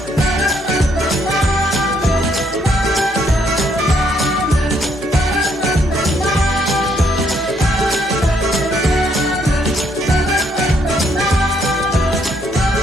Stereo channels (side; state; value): both; normal; correlation 0.71